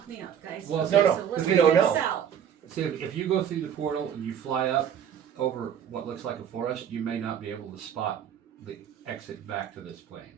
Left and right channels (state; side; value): quieter; left; 8.8 dB